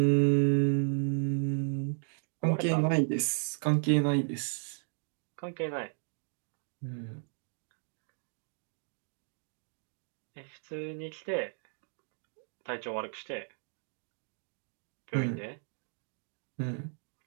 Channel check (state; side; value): silent; left; 55 dB below the other